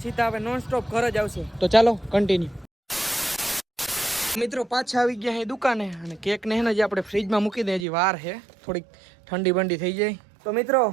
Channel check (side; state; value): left; drops out; at 7.9 s